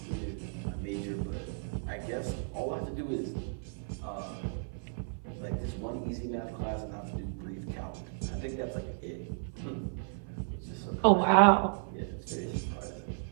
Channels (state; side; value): silent; left; 55 dB below the other